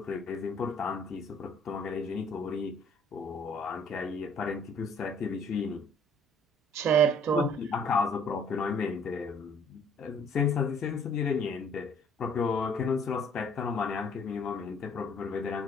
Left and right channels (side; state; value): both; normal; correlation 0.58